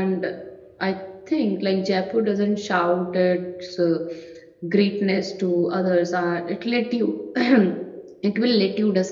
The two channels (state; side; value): identical; both; correlation 1.00